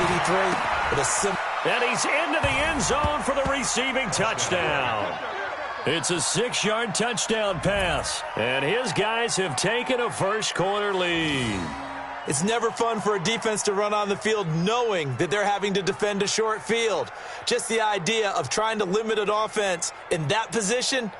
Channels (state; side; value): identical; both; correlation 1.00